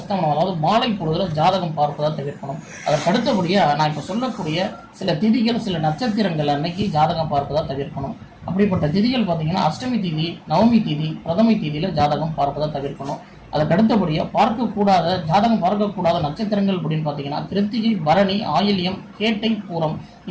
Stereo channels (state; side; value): identical; both; correlation 1.00